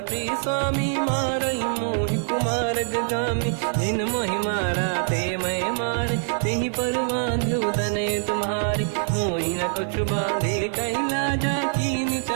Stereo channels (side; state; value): left; silent; 62 dB below the other